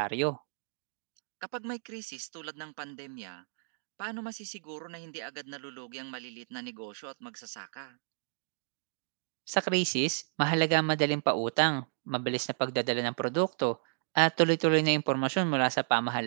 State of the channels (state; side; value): silent; left; digital silence